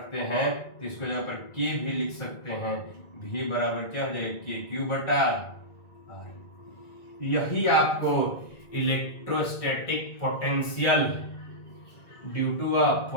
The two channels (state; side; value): late; right; 1.7 ms